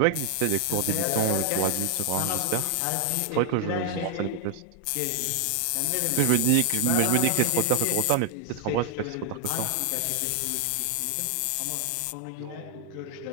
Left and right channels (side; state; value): both; different; correlation 0.00